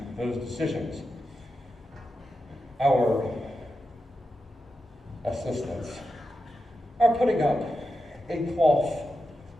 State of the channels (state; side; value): normal; both; correlation 0.89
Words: those decisions. Our assistants are putting up a cloth